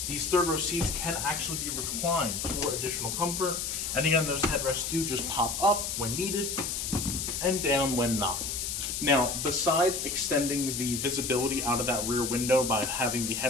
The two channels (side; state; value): left; noise; hiss, 3 dB below the sound